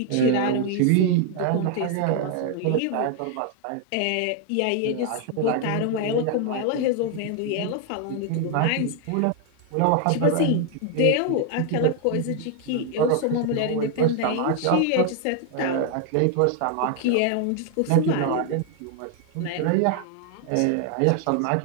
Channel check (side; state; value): both; different; correlation 0.01